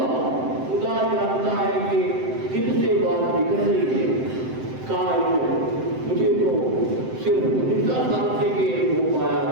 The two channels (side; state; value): left; late; 7.8 ms